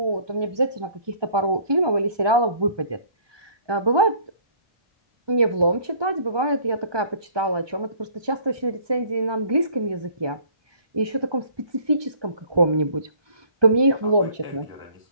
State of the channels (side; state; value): left; late; 1.2 ms